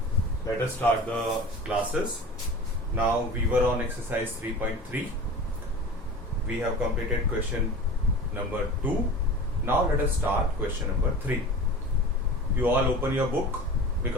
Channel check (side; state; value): both; normal; correlation 0.36